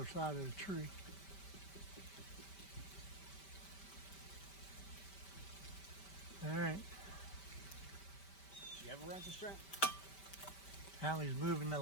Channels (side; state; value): right; late; 5.1 ms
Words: side of the tree. All right. You have a ratchet strap? Hallie's moving the